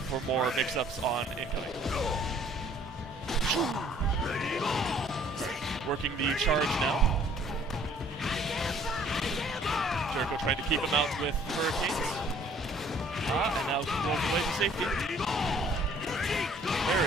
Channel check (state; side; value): normal; both; correlation 0.57